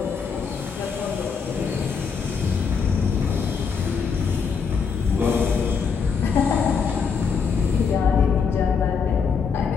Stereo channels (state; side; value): quieter; right; 5.9 dB